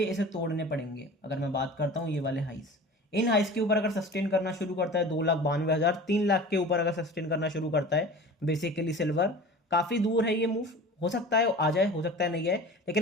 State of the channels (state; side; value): normal; both; correlation 0.38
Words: इसे तोड़ने पड़ेंगे। अगर मैं बात करता हूँ ये वाले हाइस, इन हाइस के ऊपर अगर सस्टेन करना शुरू करता है 2,92,000, 3 लाख के ऊपर अगर सस्टेन करना शुरू करता है बेसिकली सिल्वर, काफी दूर है ये मूव, हो सकता है आ जाए, हो सकता है नहीं आए,